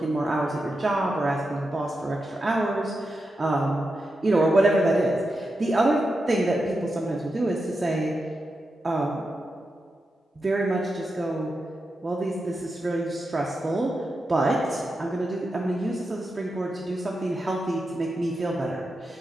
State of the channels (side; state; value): both; normal; correlation 0.88